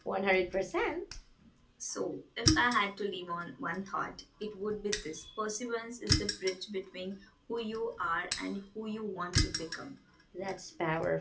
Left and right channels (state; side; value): identical; both; correlation 1.00